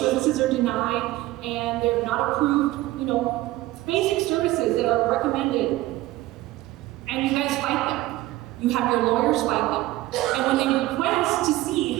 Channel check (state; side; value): quieter; left; 17.1 dB